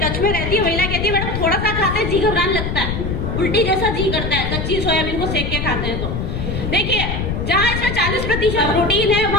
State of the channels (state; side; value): noise; left; rumble, 3 dB below the sound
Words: टच में रहती है, महिला कहती है मैडम थोड़ा सा खाते जी घबराने लगता है, उल्टी जैसा जी करता है, कच्ची सोयाबीन को सेक के खाते हैं। तो देखिए, जहाँ इसमें 40% प्रोटीन है